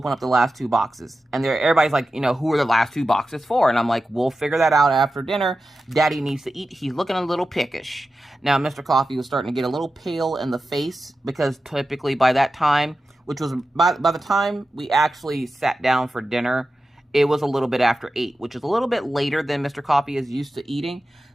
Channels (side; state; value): both; normal; correlation 0.92